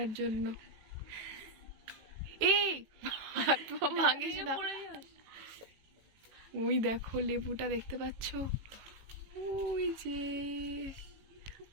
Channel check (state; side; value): late; left; 18 ms